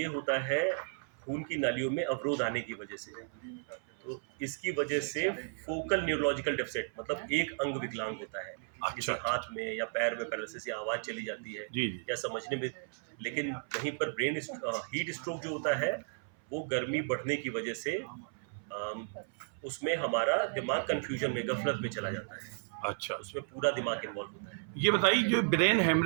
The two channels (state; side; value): silent; left; 55 dB below the other